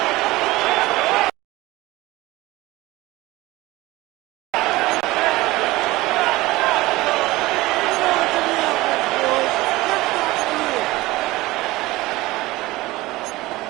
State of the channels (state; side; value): quieter; left; 19.4 dB